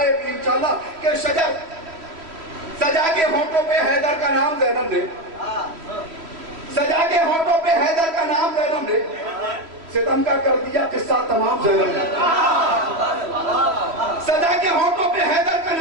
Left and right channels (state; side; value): late; left; 3.0 ms